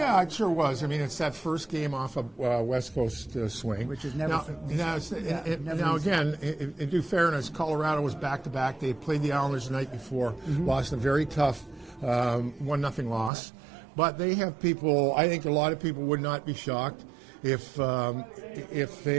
it sure was. I mean, it's that first game off a West Coast swing. Which is never Now, again, in due fairness, Colorado was back-to-back. They played the Islanders the night before, lost a very tough 1-0 loss. But they have people, I think a lot of people would not be shocked if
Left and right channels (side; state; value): left; drops out; at 13.3 s